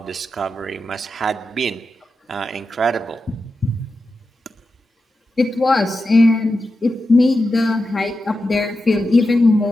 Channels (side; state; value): both; normal; correlation 0.90